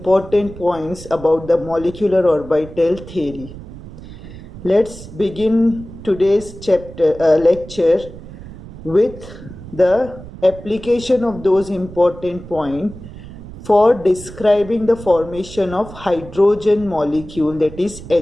points about the molecular orbital theory. Let's begin today's lecture with the application of those important points for describing the formation of hydrogen molecule, that is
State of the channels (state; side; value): noise; right; rumble, 15 dB below the sound